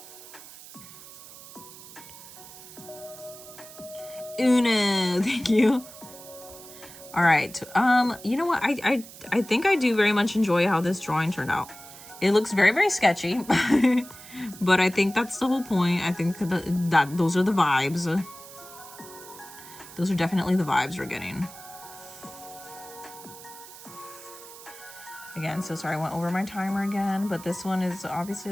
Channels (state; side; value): noise; right; hiss, 17 dB below the sound